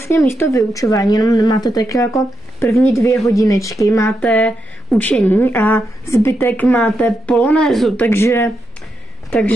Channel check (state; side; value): normal; both; correlation 0.84